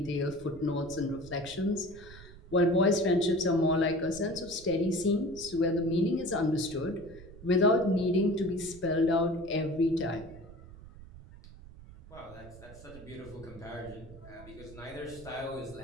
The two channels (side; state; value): right; noise; rumble, 18 dB below the sound